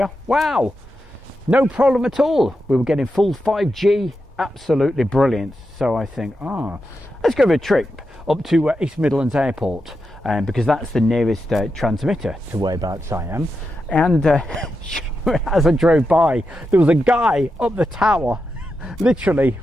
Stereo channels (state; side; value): normal; both; correlation 0.88